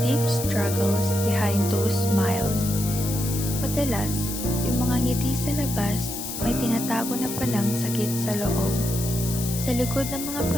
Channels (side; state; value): left; noise; hiss, 6 dB below the sound